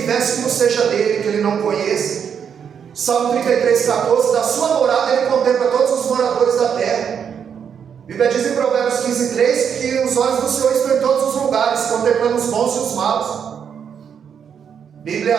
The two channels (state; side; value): quieter; left; 7.6 dB